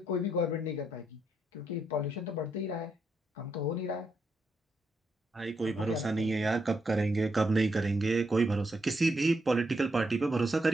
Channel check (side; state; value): both; normal; correlation 0.79